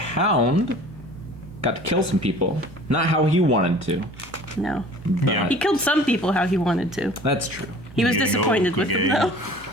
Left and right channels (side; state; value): both; normal; correlation 0.46